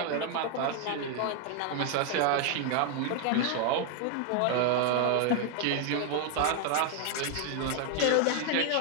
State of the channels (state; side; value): different; both; correlation 0.00